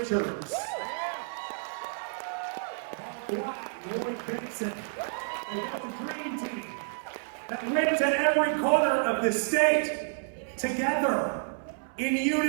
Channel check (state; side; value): silent; left; 58 dB below the other